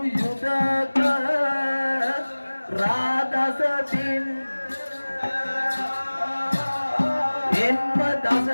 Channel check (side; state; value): both; inverted; correlation -1.00